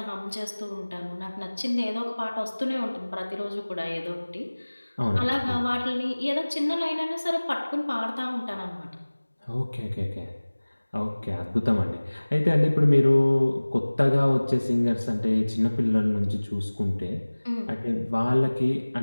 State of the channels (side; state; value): both; inverted; correlation -1.00